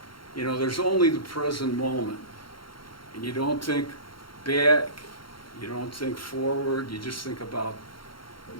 you know, there's only the present moment. And you don't think back, you don't think forward, you just think about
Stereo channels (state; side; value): late; right; 0.73 ms